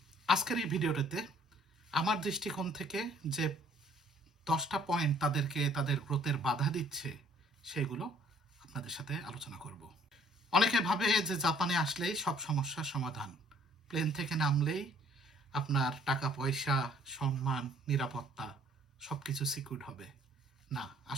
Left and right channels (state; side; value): normal; both; correlation 0.59